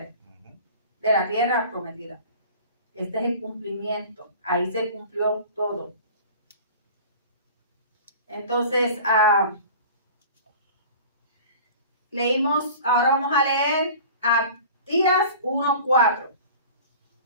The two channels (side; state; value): both; inverted; correlation -0.41